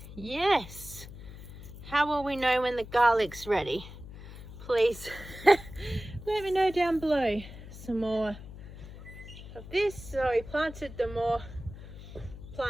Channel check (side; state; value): left; noise; hum, 14 dB below the sound